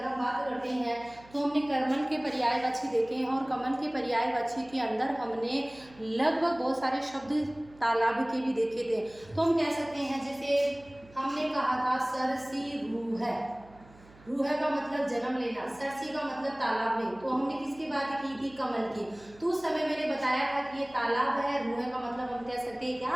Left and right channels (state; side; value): noise; right; hum, 24 dB below the sound